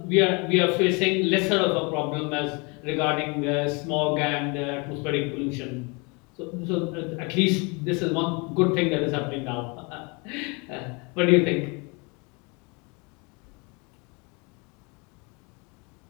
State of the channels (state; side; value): quieter; right; 30.2 dB